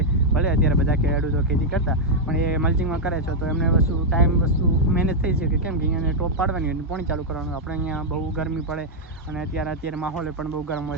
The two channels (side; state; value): both; normal; correlation -0.03